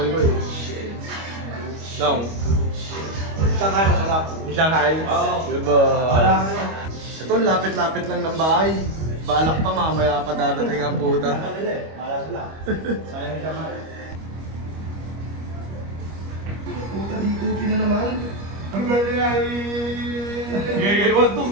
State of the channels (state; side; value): late; left; 25 ms